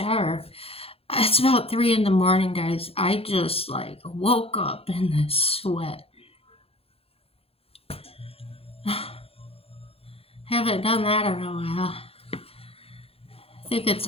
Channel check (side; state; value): right; late; 0.28 ms